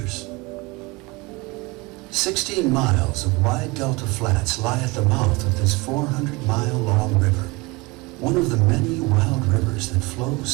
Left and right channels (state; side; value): quieter; left; 24.4 dB